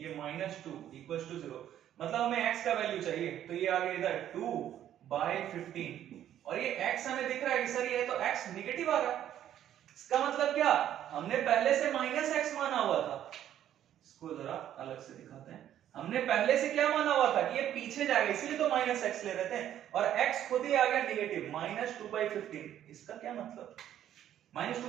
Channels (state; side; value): quieter; left; 11.1 dB